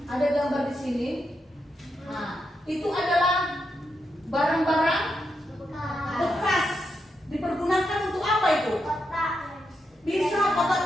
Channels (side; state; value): both; normal; correlation 0.84